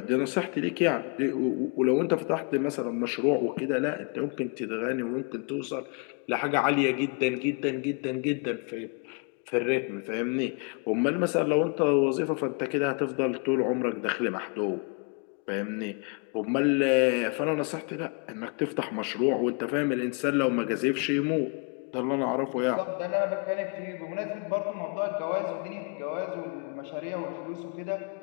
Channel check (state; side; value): quieter; right; 37.3 dB